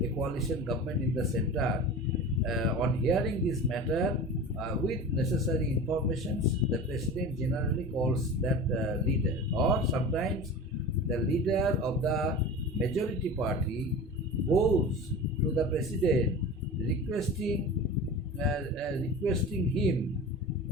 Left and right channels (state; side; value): normal; both; correlation 0.33